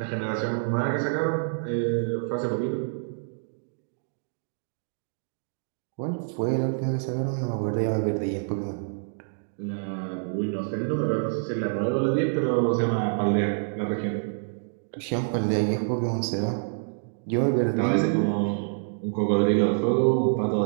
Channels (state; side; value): silent; left; digital silence